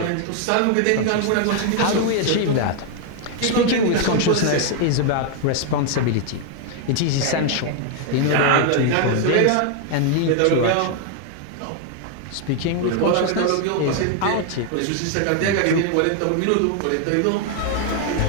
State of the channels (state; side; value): different; both; correlation 0.00